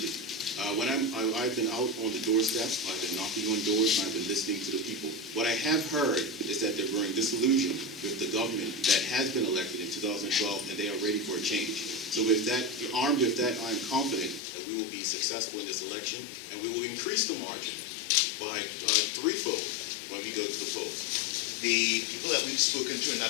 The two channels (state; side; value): drops out; right; at 14.4 s